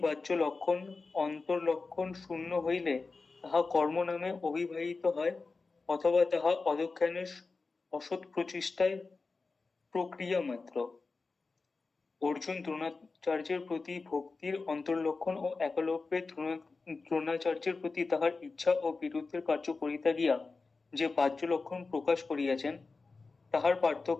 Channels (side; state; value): right; quieter; 4.0 dB